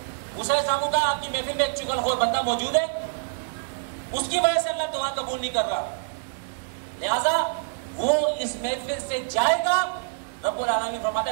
موسیٰ علیہ السلام کا آپ کی محفل میں ایک چغل خور بندہ موجود ہے، اس کی وجہ سے اللہ دعا قبول نہیں کر رہا، لہذا وہ اس محفل سے جائے گا، رب العالمین فرماتا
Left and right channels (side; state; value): left; silent; digital silence